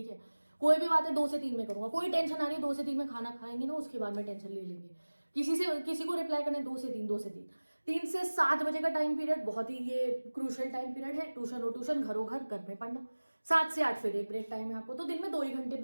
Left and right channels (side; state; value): both; inverted; correlation -1.00